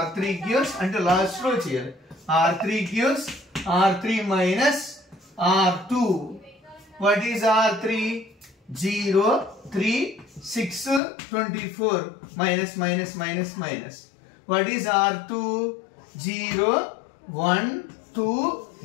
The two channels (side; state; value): right; drops out; at 11.0 s